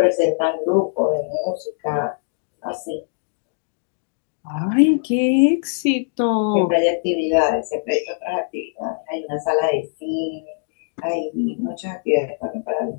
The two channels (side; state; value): right; silent; digital silence